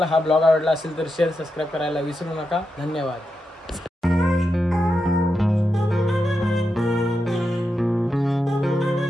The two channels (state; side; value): normal; both; correlation 0.87